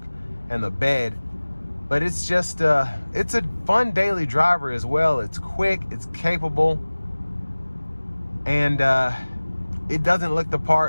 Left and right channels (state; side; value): inverted; both; correlation -1.00